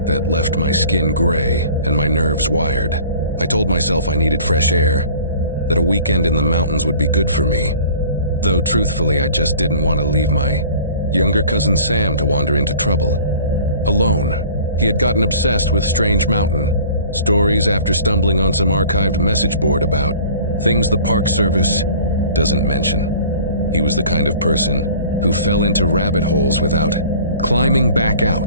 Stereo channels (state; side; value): inverted; both; correlation -0.47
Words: that left my skin gray and my nerves wired. I told myself I needed fresh air, that a weekend in the mountains would be good for me. Though truthfully, I just didn't want to leave my younger cousin Sam to wander into trouble. Alone. He had gotten obsessed with Strange Mountain. Stories after stumbling on some archived message board about things the Park Service doesn't mention. He was the kind of person who fell into rabbit holes without climbing back